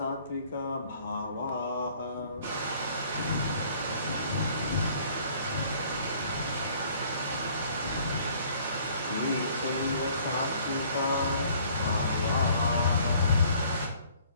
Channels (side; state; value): both; inverted; correlation -0.57